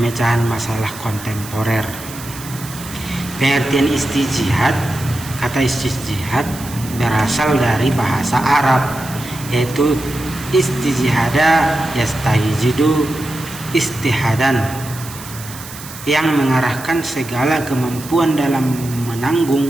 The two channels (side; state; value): right; noise; hiss, 14 dB below the sound